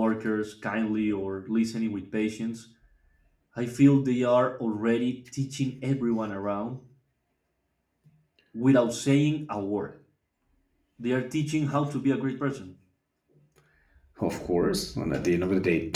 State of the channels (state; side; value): identical; both; correlation 1.00